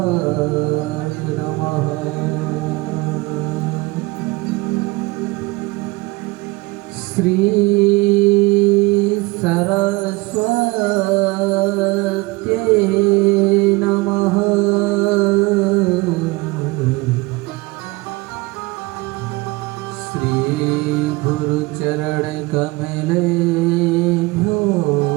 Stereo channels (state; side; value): quieter; left; 23.2 dB